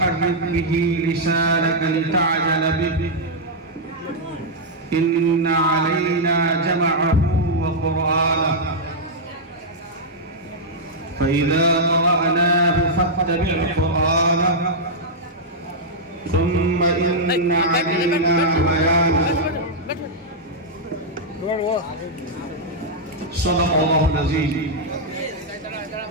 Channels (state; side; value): normal; both; correlation -0.06